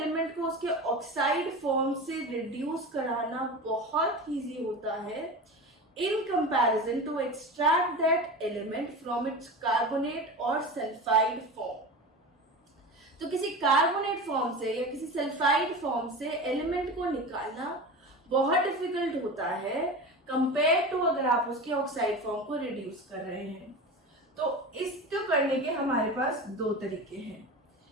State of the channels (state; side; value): normal; both; correlation 0.29